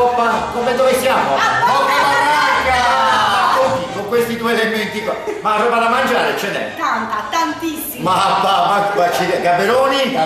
dove siamo? Coppa Barranca! Con questi due elementi qua. Ma roba da mangiare ce n'è? Tantissima. Ma Gaberoni?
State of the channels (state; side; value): identical; both; correlation 1.00